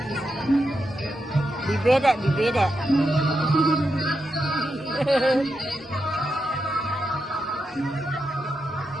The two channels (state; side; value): normal; both; correlation 0.86